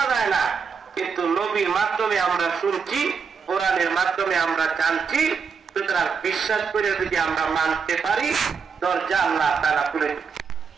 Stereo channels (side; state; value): left; quieter; 5.9 dB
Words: যায় না কিন্তু নবীর মাধ্যমে আমরা শুনছি, কোরআনের মাধ্যমে আমরা জানছি। সুতরাং বিশ্বাস করে যদি আমরা মানতে পারি, দরজা আল্লাহ তাআলা খুলে দেন।